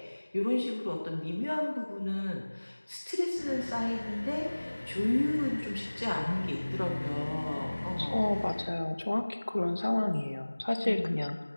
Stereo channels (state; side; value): inverted; both; correlation -1.00